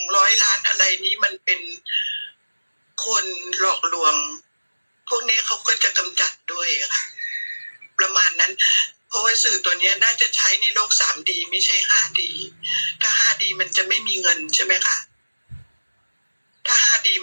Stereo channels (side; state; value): both; inverted; correlation -1.00